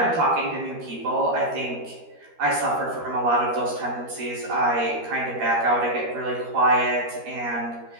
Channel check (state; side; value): late; left; 13 ms